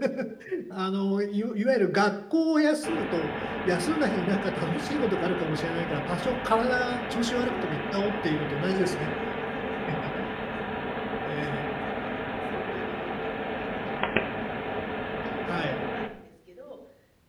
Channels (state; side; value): identical; both; correlation 1.00